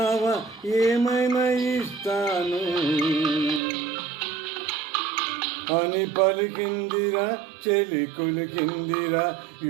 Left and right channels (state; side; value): drops out; left; at 3.6 s